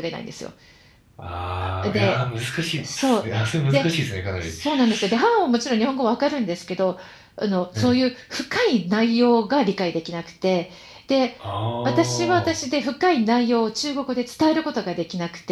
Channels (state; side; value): identical; both; correlation 1.00